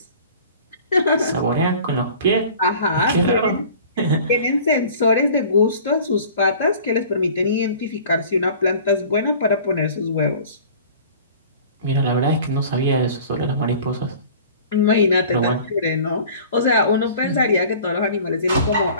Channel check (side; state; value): both; inverted; correlation -0.45